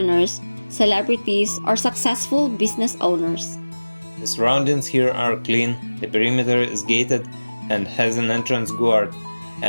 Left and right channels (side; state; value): both; inverted; correlation -1.00